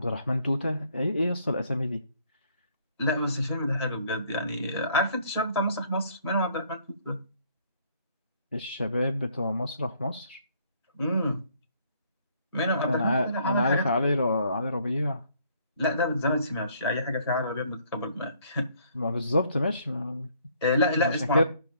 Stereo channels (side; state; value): both; inverted; correlation -0.63